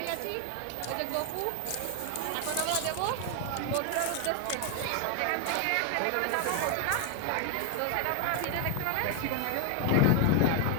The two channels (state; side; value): different; both; correlation 0.01